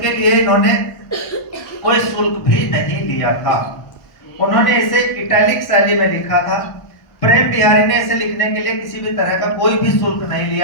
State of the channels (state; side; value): late; right; 1.1 ms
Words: लिए इन्होंने कोई शुल्क भी नहीं लिया था। उन्होंने इसे इटैलिक शैली में लिखा था। प्रेम बिहारी ने इसे लिखने के लिए किसी भी तरह का कोई भी शुल्क नहीं